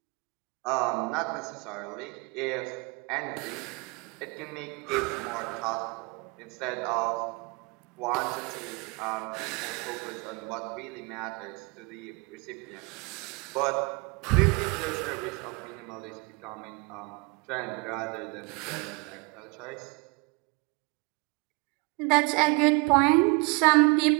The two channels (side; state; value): left; quieter; 28.3 dB